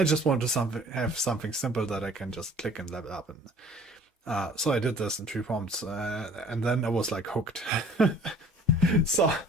just want to have something simple that I can just click and level up. And so I did this in 3 prompts, and then I was like hooked. so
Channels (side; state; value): both; normal; correlation 0.52